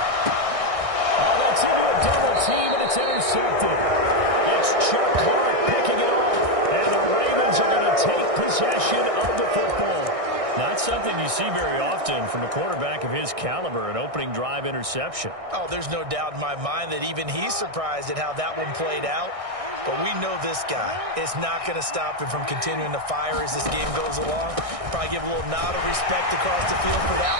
Oh, that's into a double team, and it's intercepted. It's Chuck Clark picking it off. And the Ravens are going to take possession of the football. Not something you see very often from a quarterback of his caliber, an opening drive interception. Oh, there's no doubt in my mind that even he's surprised at how that one played out. But we know this guy is not going to stop him from continuing to fire as this game goes along. Probably give a little nod of respect across the field for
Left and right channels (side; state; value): left; late; 1.6 ms